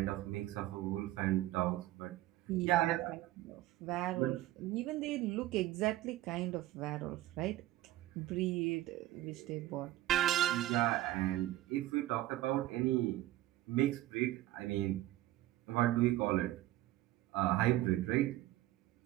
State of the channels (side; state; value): left; quieter; 15.7 dB